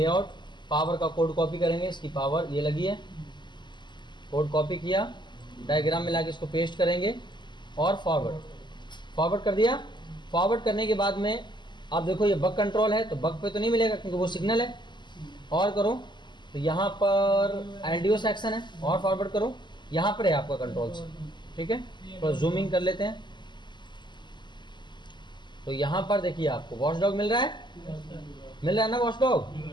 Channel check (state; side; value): late; right; 0.22 ms